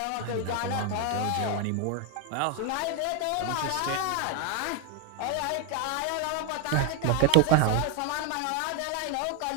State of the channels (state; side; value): different; both; correlation 0.01